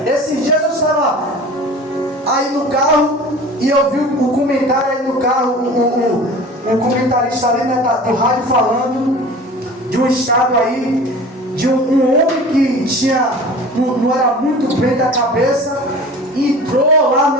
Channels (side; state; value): both; normal; correlation 0.40